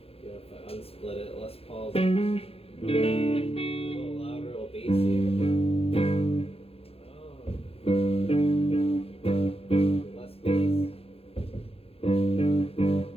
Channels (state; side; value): late; right; 0.28 ms